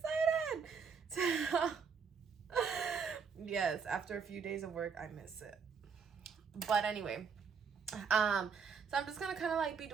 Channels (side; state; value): left; quieter; 6.0 dB